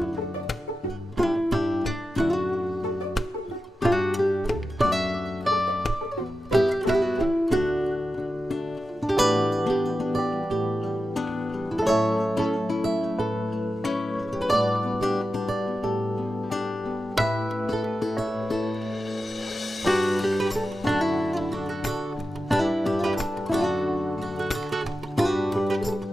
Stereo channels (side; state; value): both; normal; correlation 0.92